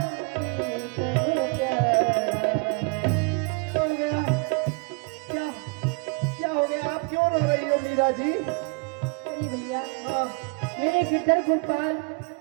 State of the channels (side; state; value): left; quieter; 31.5 dB